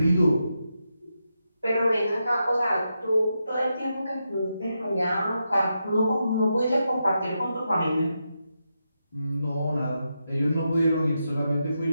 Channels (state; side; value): inverted; both; correlation -0.86